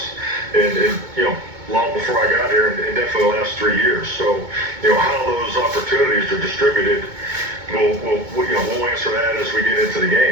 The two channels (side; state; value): left; late; 2.2 ms